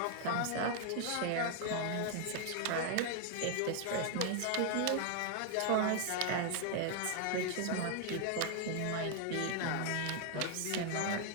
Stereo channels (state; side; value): different; both; correlation 0.00